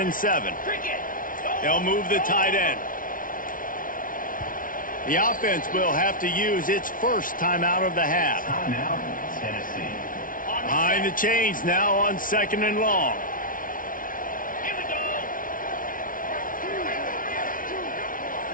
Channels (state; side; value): late; right; 0.39 ms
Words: 7. They'll move the tight end. The offense will have to use its first timeout of the half. Timeout, Tennessee. Behind the chains now on 2nd and long.